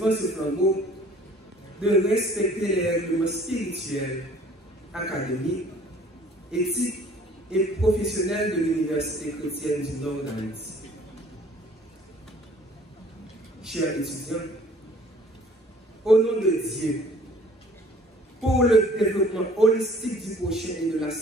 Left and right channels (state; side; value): normal; both; correlation 0.54